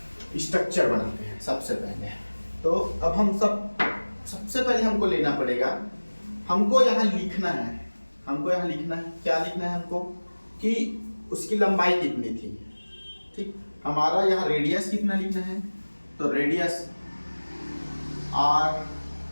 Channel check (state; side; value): inverted; both; correlation -1.00